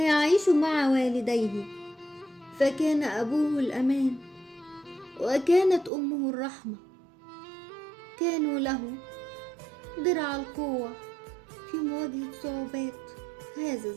مع والديه، فكان أبوه الأمان وكانت أمه الرحمة. كانوا له درع القوة في مواجهة صعوبات هذا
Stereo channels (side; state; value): left; drops out; at 5.9 s